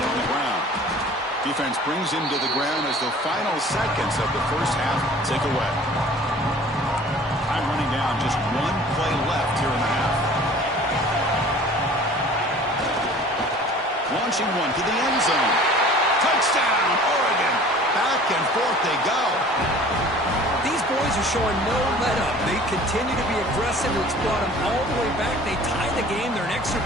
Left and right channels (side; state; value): both; normal; correlation 0.47